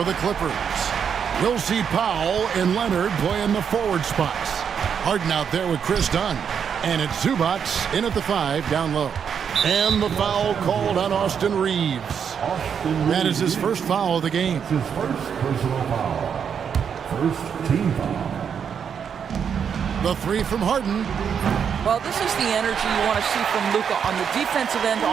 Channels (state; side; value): quieter; left; 7.4 dB